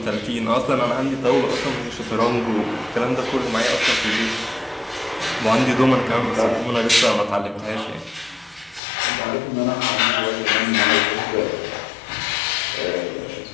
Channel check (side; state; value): right; drops out; at 8.8 s